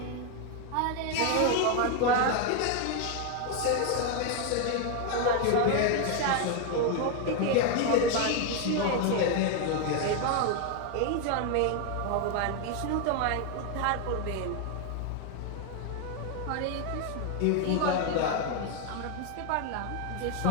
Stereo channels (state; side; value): different; both; correlation 0.01